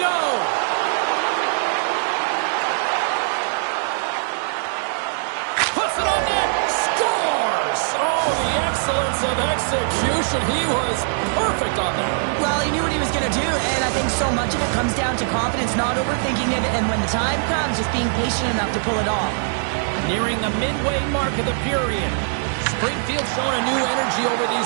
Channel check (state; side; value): silent; left; 58 dB below the other